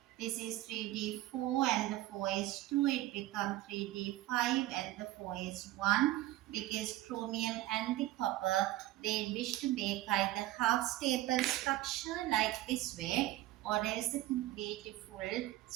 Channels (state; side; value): quieter; left; 16.1 dB